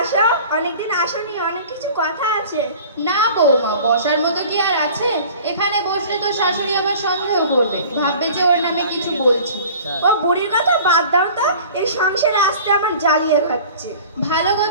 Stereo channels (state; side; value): inverted; both; correlation -0.44